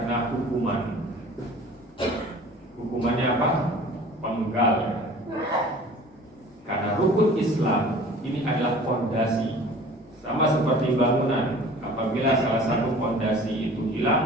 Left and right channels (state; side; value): normal; both; correlation 0.45